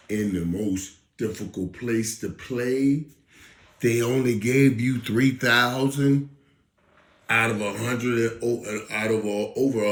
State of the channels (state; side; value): identical; both; correlation 1.00